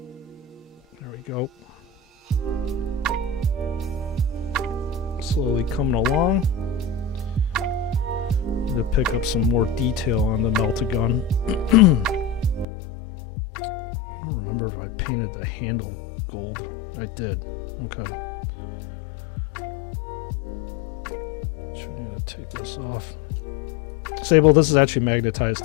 There we go. Slowly coming along. Need to pick up some more detail on the Meltagun. I don't remember if I painted the handle gold. I did. Okay. Should need to take this off. Sable, this is actually magnetized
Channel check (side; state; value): right; drops out; at 12.7 s